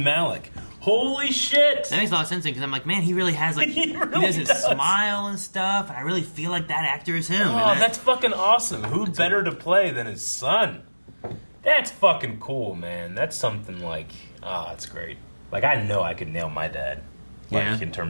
Malik? Holy shit! That makes a lot of sense because I'm like, man, he really has like He really doesn't does. smile and stuff, and I really feel like that actor is him. Oh, that's fucking awesome. Who better to play than his son? That's fucking cool, man. That's something like, it's great. Like, I know I could nail my dad. Like, Yeah. in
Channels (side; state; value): both; inverted; correlation -1.00